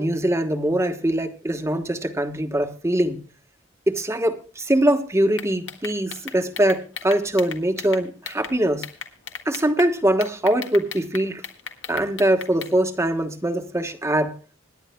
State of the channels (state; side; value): normal; both; correlation 0.79